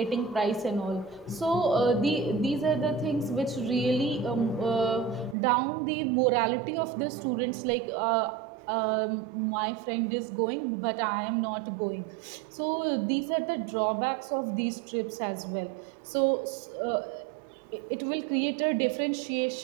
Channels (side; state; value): left; drops out; at 5.4 s